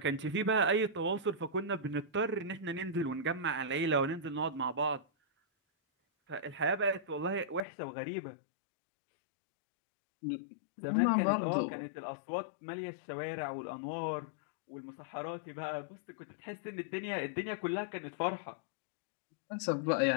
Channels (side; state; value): right; drops out; at 7.7 s